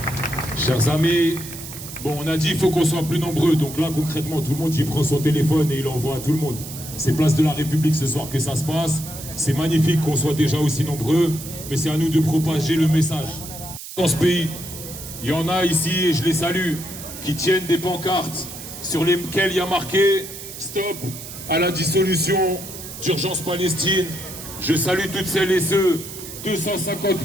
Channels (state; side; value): noise; right; hiss, 12 dB below the sound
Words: Chers amis, bon, on a dit qu'il faut qu'on soit plus nombreux. Donc là, concrètement, tout le monde il prend son téléphone et il envoie à tout le monde. C'est place de la République ce soir que ça se passe. C'est magnifique qu'on soit déjà aussi nombreux, mais c'est à nous de propager le message. Dans ce pays, il y en a ici, et je les salue, qui tiennent des pancartes sur lesquelles il y a marqué « Stop à la dissolution d'Urgence Palestine ». Je salue toutes celles et ceux, 250